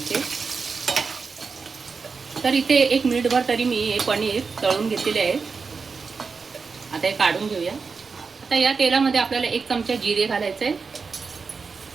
तर इथे 1 मिनिटभर तरी मी हे पनीर तळून घेतलेले आहे. आता हे काढून घेऊया. आता या तेलामध्ये आपल्याला 1 चमचा जिरे घालायचं आहे,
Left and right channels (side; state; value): left; quieter; 4.9 dB